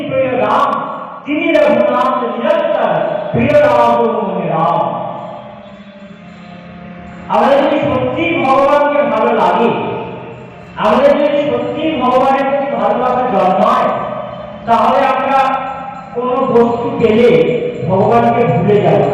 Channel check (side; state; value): both; identical; correlation 1.00